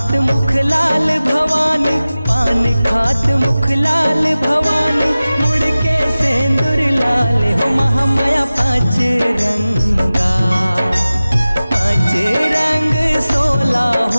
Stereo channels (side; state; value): both; inverted; correlation -0.97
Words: मुख लाल भवानी, पान खात मुख लाल भवानी, मुड़ के सेंदूर लाल हो महामाया पांच रंगा, पांच रंग 16